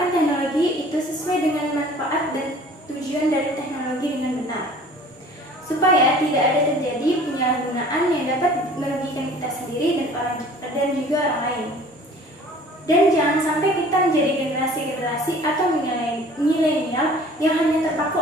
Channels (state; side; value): normal; both; correlation 0.48